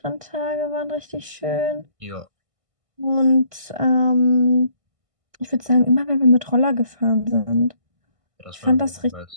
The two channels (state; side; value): late; left; 1.5 ms